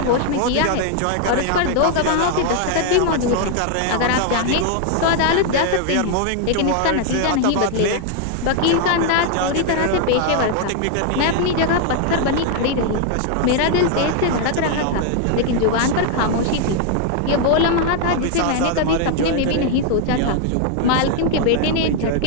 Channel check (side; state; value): both; different; correlation 0.00